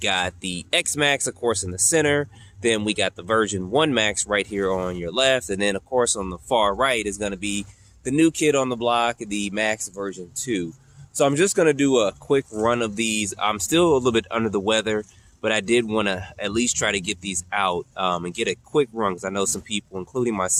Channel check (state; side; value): identical; both; correlation 1.00